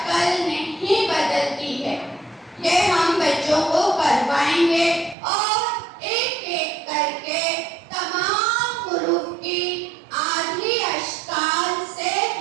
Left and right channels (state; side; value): drops out; left; at 5.2 s